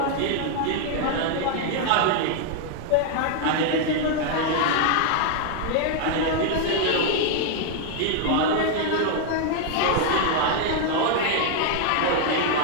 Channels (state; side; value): different; both; correlation 0.00